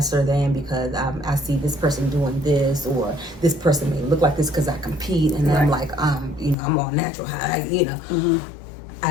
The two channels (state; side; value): drops out; right; at 6.6 s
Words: than because I see this person doing this, or this person may look like this because I compete, and then I'm like, you know, I'm on natural high, you know.